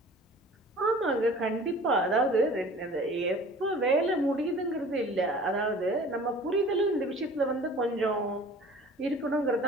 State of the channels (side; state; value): both; normal; correlation 0.45